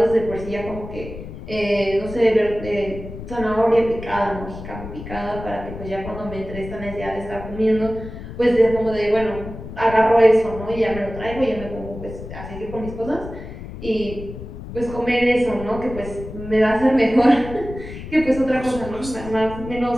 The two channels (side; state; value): left; noise; rumble, 11 dB below the sound